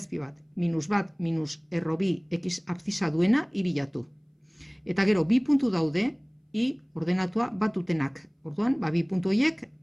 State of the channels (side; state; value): both; identical; correlation 1.00